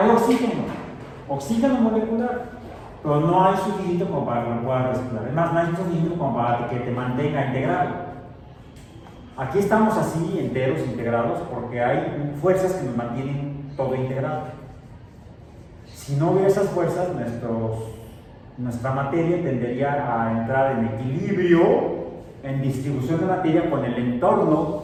oxígeno molecular, pero no hay suficiente como para que lo puedas respirar. Además, no hay suficiente como para que te mantenga integrado. Aquí estamos así, enteros, integrados, porque hay fuerzas que nos mantienen todo integrado. Si no hubiera esas fuerzas, nuestra materia tendería a entrar en equilibrio, en distribución de materia con el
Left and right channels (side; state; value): both; identical; correlation 1.00